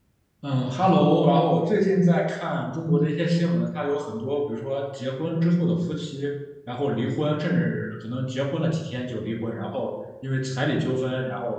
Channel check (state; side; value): identical; both; correlation 1.00